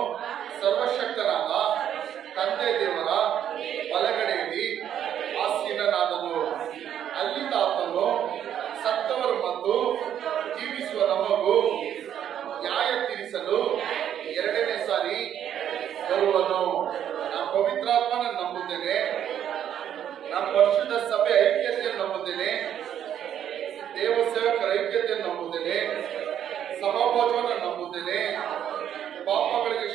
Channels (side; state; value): left; quieter; 9.9 dB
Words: ಸರ್ವಶಕ್ತನಾದ ತಂದೆ ದೇವರ ಬಲಗಡೆಯಲ್ಲಿ ಆಸೀನನಾದನು. ಅಲ್ಲಿಂದ ಆತನು ಸತ್ತವರು ಮತ್ತು ಜೀವಿಸುವ ನಮಗೂ ನ್ಯಾಯ ತೀರಿಸಲು ಎರಡನೇ ಸಾರಿ ಬರುವನು. ನಾನು ಪವಿತ್ರಾತ್ಮನ ನಂಬುತ್ತೇನೆ, ನಾನು ಪರಿಶುದ್ಧ ಸಭೆ ಐಕ್ಯತೆಯನ್ನು ನಂಬುತ್ತೇನೆ, ದೇವ ಸೇವಕರ ಐಕ್ಯತೆಯನ್ನು ನಂಬುತ್ತೇನೆ, ಸಭಾಭೋಜವನ್ನು ನಂಬುತ್ತೇನೆ, ಪಾಪಗಳಿಗೆ